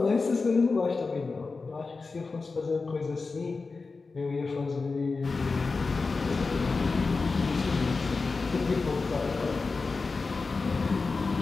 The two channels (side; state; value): right; quieter; 4.1 dB